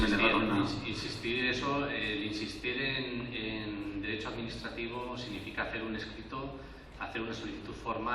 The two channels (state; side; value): identical; both; correlation 1.00